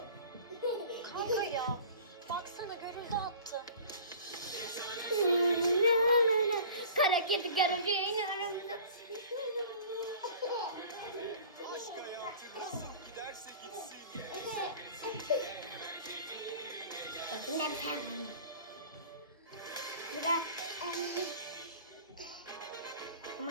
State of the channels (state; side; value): inverted; both; correlation -0.44